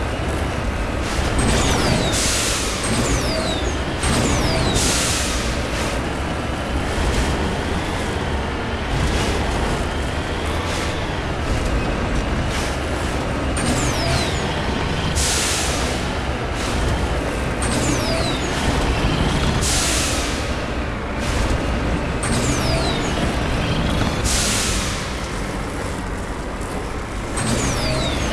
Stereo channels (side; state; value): both; identical; correlation 1.00